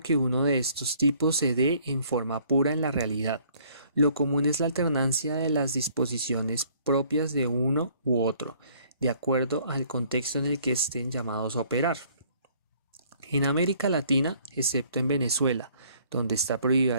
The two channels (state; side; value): inverted; both; correlation -0.60